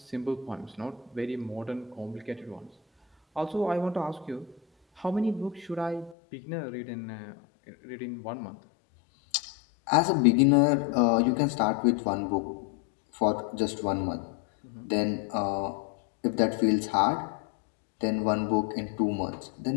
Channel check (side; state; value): right; drops out; at 6.2 s